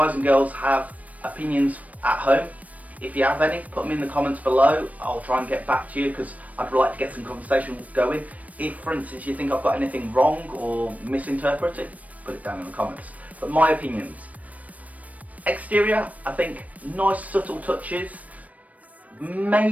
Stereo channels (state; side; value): late; left; 0.070 ms